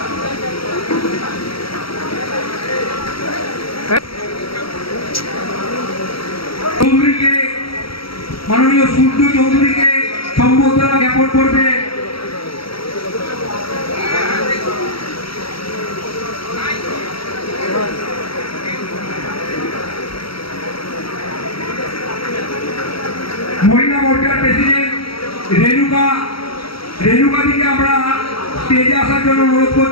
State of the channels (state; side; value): late; right; 0.75 ms